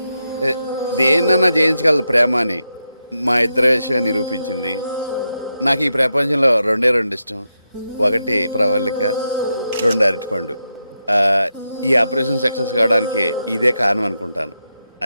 దేన్నన్నా జయించగలదు ప్రేమ అని మా ఇద్దరి విషయం నిరూపించింది. నాకు ఈ ప్రపంచంలో 2 ఇష్టం. 1 ప్రవళిక, 2 అరటిపండు. ఈ ఆపరేషన్ సక్సెస్ కావడానికి ఇదే కారణం అనుకుంటాను.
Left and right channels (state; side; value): inverted; both; correlation -0.86